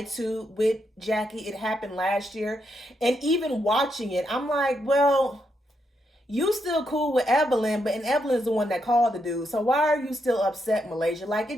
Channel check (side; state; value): both; normal; correlation 0.80